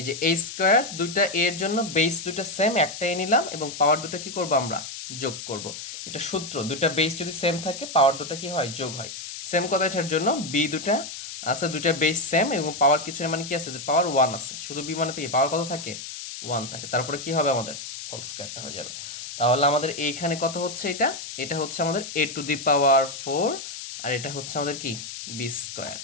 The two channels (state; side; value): noise; left; hiss, 9 dB below the sound